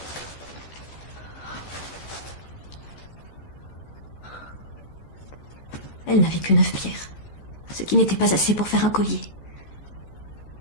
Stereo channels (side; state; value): right; late; 14 ms